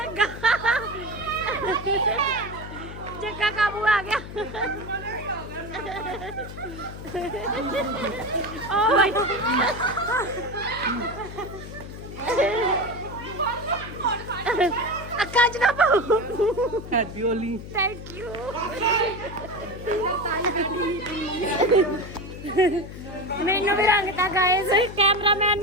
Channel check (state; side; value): noise; left; hum, 11 dB below the sound